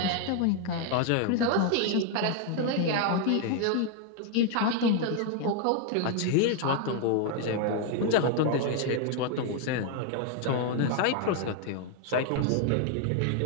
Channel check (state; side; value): different; both; correlation 0.00